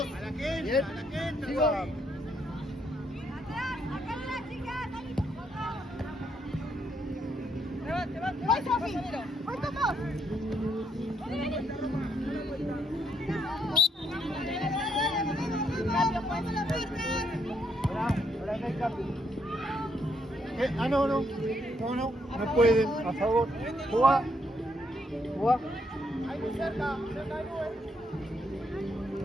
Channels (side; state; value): both; normal; correlation 0.75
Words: Bien. Sigo. ¡Voy, Sofi! ¡Voy con vos! Ahora no hay cambio. Ah, no, no. No, no. No pueden. A favor. Juega. Juega. Ahí muy cerca, cerca de nube.